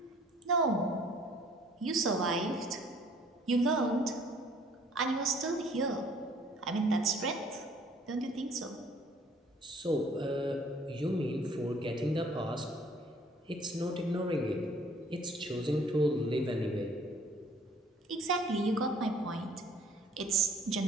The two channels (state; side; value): normal; both; correlation 0.57